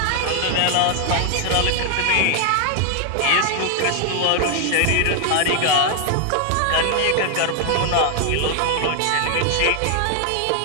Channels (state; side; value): different; both; correlation 0.00